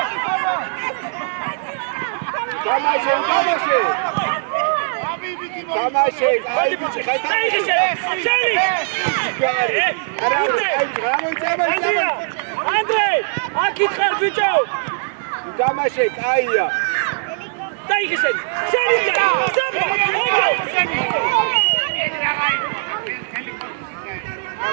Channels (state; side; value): silent; left; digital silence